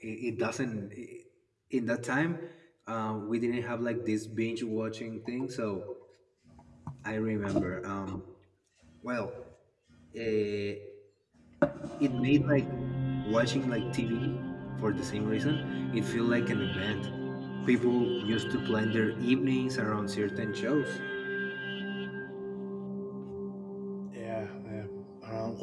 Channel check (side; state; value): both; identical; correlation 1.00